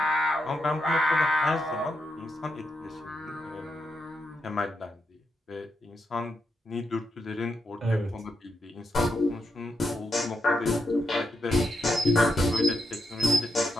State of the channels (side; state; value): both; normal; correlation 0.83